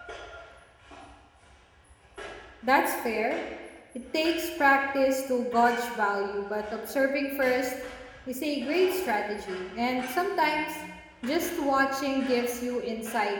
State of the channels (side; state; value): both; identical; correlation 1.00